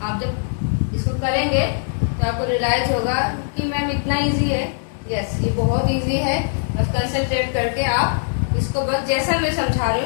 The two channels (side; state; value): right; silent; digital silence